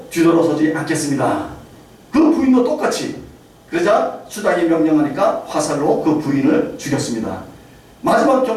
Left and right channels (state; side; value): identical; both; correlation 1.00